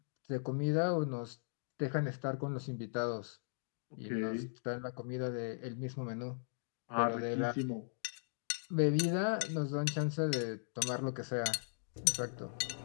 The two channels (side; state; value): right; silent; digital silence